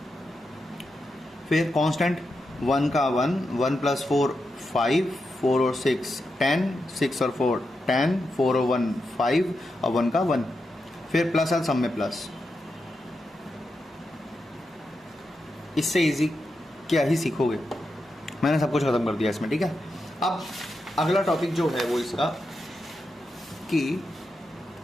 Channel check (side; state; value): both; normal; correlation 0.87